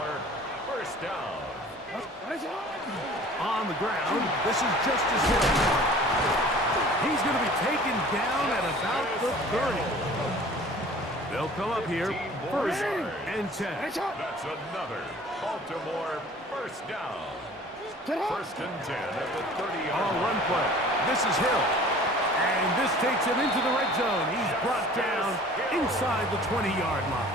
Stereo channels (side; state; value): both; normal; correlation 0.47